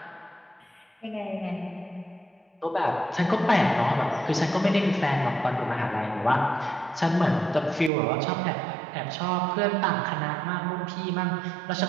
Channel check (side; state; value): left; drops out; at 7.9 s